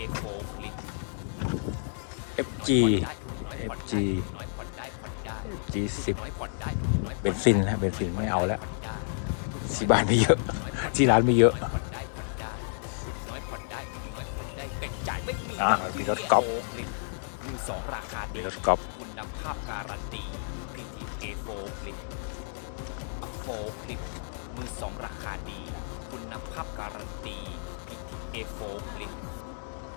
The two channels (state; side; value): silent; right; 57 dB below the other